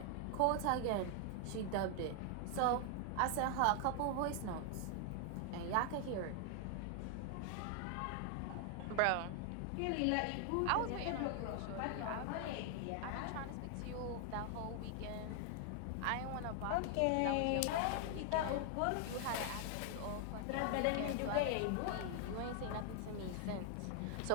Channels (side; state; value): both; different; correlation 0.00